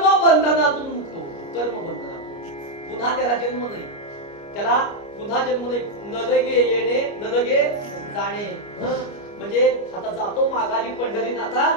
बंधनातून मुक्त होतो. कर्म बंधनातून पुन्हा त्याला जन्म नाही, त्याला पुन्हा जन्म नाही. न लगे येणे न लगे जाणे. म्हणजे आता जातो माघारी पंढरीनाथा,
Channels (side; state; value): right; late; 29 ms